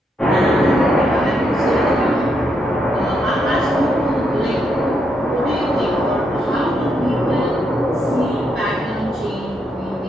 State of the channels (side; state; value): both; normal; correlation 0.79